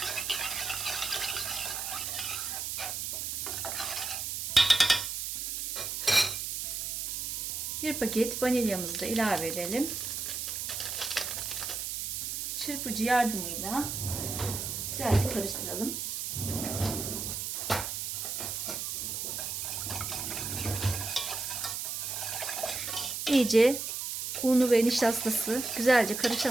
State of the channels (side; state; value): right; noise; hiss, 3 dB below the sound